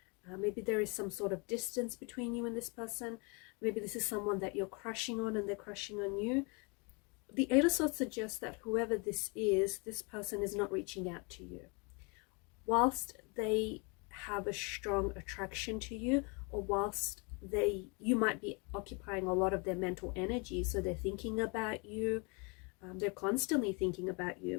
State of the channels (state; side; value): quieter; right; 32.0 dB